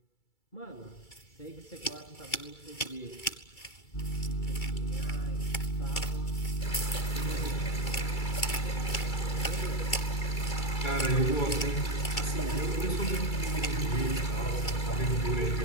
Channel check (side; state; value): right; late; 2.3 ms